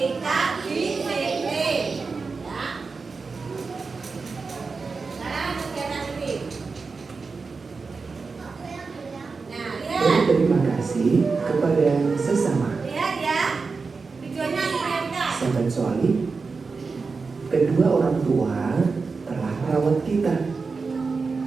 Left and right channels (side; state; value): left; quieter; 4.5 dB